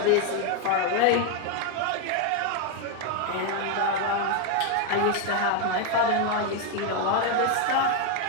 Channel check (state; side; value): different; both; correlation 0.01